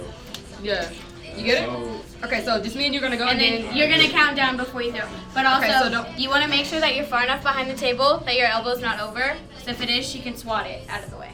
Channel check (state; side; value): identical; both; correlation 1.00